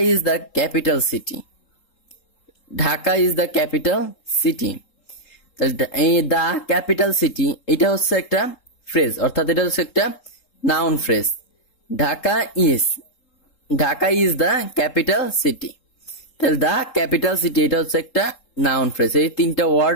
is the capital city. Dhaka is the capital city. এই দ্য ক্যাপিটাল সিটি এটা হচ্ছে একটা ফ্রেজ, অর্থাৎ এটা হচ্ছে একটা noun phrase. Dhaka is the capital city. তাহলে দ্য ক্যাপিটাল সিটি এটা হচ্ছে একটা নাউন ফ্রেজ। এই 3টা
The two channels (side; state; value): right; late; 3.7 ms